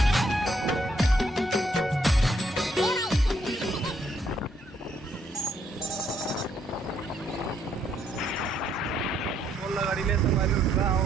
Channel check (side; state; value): both; normal; correlation 0.71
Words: गाड़ी ले संगवारी उठा आओ